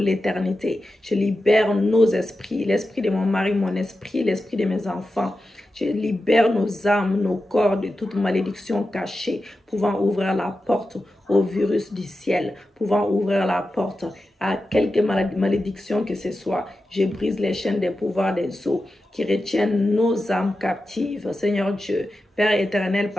Je libère nos esprits, l'esprit de mon mari, mon esprit, l'esprit de mes enfants. Je libère nos âmes, nos corps de toute malédiction cachée, pouvant ouvrir la porte au virus du ciel, pouvant ouvrir la porte à quelque malédiction que ce soit. Je brise les chaînes des pouvoirs des eaux qui retiennent nos âmes captives. Seigneur Dieu, Père éternel,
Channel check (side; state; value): both; normal; correlation 0.91